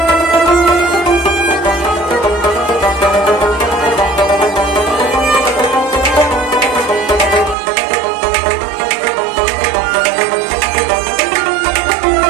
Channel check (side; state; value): left; drops out; at 7.6 s